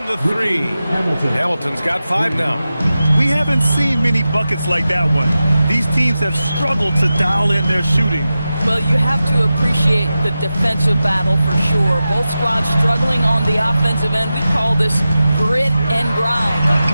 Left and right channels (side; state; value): both; inverted; correlation -0.93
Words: the 3. Hamilton's got 5 now. We haven't seen many buckets like that one. These teams have struggled to dial in their shooting. Well, you have to appreciate the defensive battle for sure. Both squads struggling on the offensive end. We call this grit and grind.